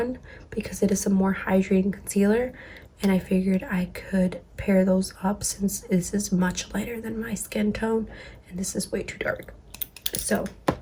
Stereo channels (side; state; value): both; identical; correlation 1.00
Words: because it is a more hydrating concealer, and I figured I could pair those up since this is much lighter than my skin tone and this is way too dark. So